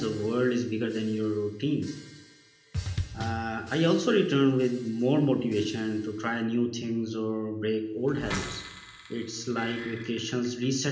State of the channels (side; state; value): both; identical; correlation 1.00